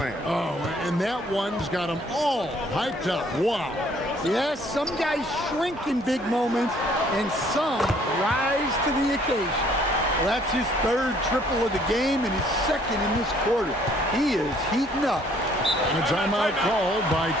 Oh, and that one's got them all hyped up. Wow. Yes, some guys shrink in big moments, and some rise to the occasion. Well, that's his 3rd triple of the game and his 2nd in this quarter. He is heating up. And a timeout called by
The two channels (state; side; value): normal; both; correlation 0.61